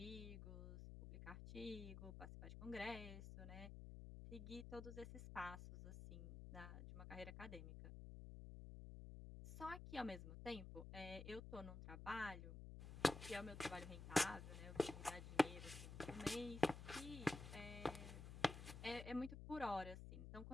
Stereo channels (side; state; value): left; noise; hum, 9 dB below the sound